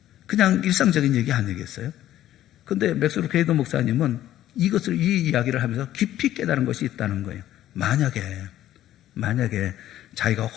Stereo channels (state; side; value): quieter; right; 12.9 dB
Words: 그냥 일상적인 얘기 아니겠어요? 근데 맥스 루케이도 목사님은 이 이야기를 하면서 깊이 깨달은 것이 있다는 거예요. 만약에 자기가